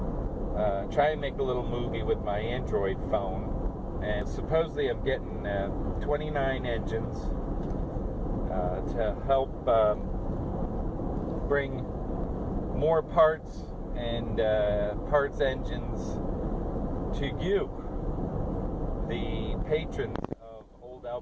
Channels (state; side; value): identical; both; correlation 1.00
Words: try and make a little movie with my Android phone. And supposedly I'm getting 29 engines to help bring more parts and parts engines to you, the patrons of